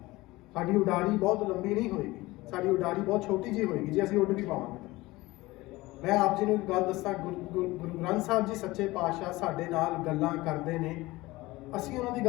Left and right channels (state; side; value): quieter; right; 20.0 dB